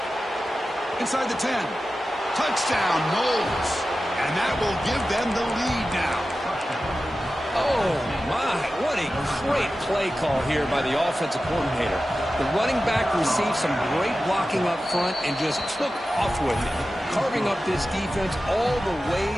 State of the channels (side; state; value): both; normal; correlation 0.94